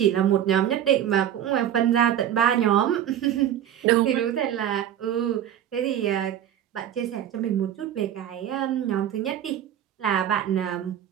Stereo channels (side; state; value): left; quieter; 10.6 dB